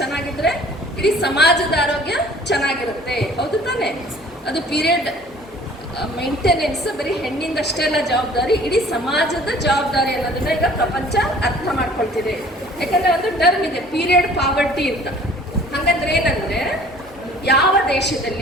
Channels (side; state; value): both; normal; correlation 0.51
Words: ಚೆನ್ನಾಗಿದ್ರೆ ಇಡೀ ಸಮಾಜದ ಆರೋಗ್ಯ ಚೆನ್ನಾಗಿರುತ್ತೆ, ಹೌದು ತಾನೇ? ಅದು ಪೀರಿಯಡ್ ಮೇಂಟೆನೆನ್ಸ್ ಬರೀ ಹೆಣ್ಣಿಂದಷ್ಟೇ ಅಲ್ಲ ಜವಾಬ್ದಾರಿ, ಇಡೀ ಸಮಾಜದ ಜವಾಬ್ದಾರಿ ಅನ್ನೋದನ್ನ ಈಗ ಪ್ರಪಂಚ ಅರ್ಥ ಮಾಡ್ಕೊಳ್ತಿದೆ. ಯಾಕಂದರೆ ಒಂದು ಟರ್ಮ್ ಇದೆ ಪೀರಿಯಡ್ ಪಾವರ್ಟಿ ಅಂತ. ಹಾಗಂದ್ರೆ ಏನಂದರೆ ಯಾವ